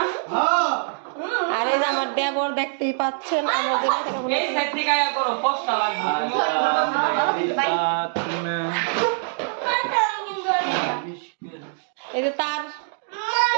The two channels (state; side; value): silent; left; digital silence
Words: আর এই যে আমার দেবর দেখতেই পাচ্ছেন। আমরা এই যে তার